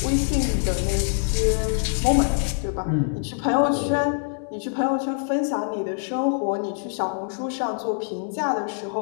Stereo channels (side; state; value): right; silent; 62 dB below the other